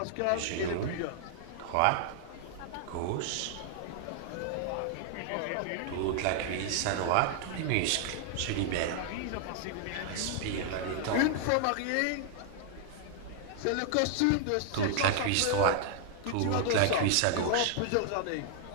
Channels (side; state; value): both; different; correlation 0.00